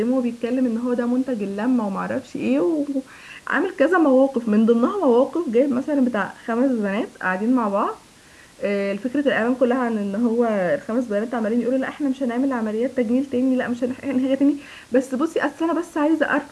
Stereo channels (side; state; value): both; identical; correlation 1.00